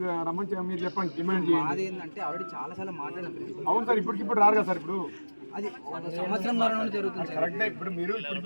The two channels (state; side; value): inverted; both; correlation -1.00